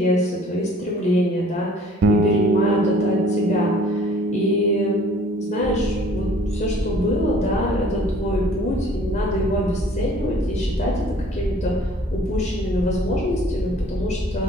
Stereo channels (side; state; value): both; normal; correlation 0.53